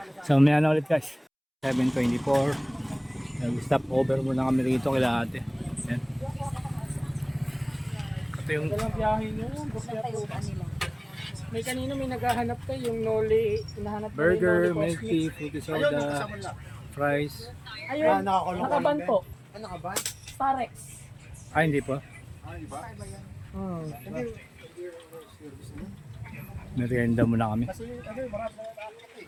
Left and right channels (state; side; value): identical; both; correlation 1.00